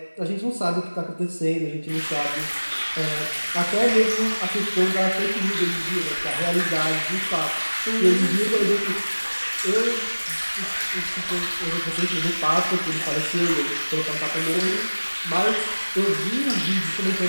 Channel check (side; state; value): both; inverted; correlation -1.00